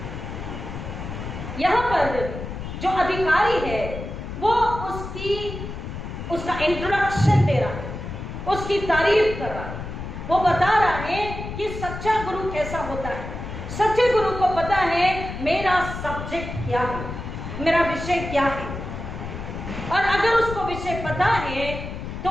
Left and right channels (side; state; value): left; noise; rumble, 8 dB below the sound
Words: यहां पर जो अधिकारी है वो उसका इंट्रोडक्शन दे रहा है, उसकी तारीफ कर रहा है, वो बता रहा है कि सच्चा गुरु कैसा होता है। सच्चे गुरु को पता है मेरा सब्जेक्ट क्या है, मेरा विषय क्या है, और अगर उसको विषय पता है तो